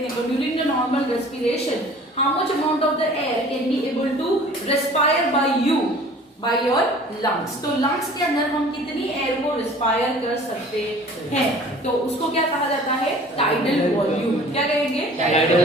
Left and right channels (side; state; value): both; normal; correlation 0.47